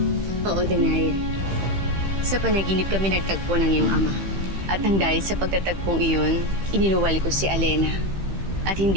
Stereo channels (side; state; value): left; late; 15 ms